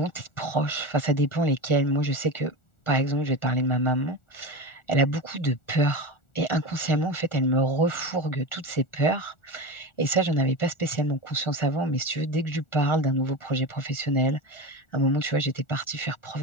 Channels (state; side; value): late; right; 1.4 ms